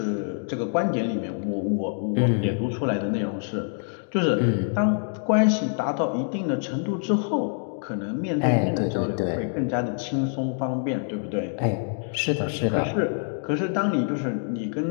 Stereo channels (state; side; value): silent; right; 61 dB below the other